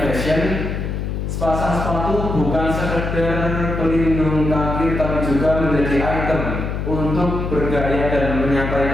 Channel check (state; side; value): noise; left; hum, 3 dB below the sound